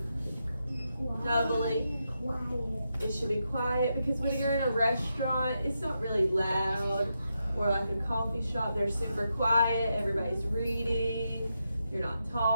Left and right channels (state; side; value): inverted; both; correlation -0.85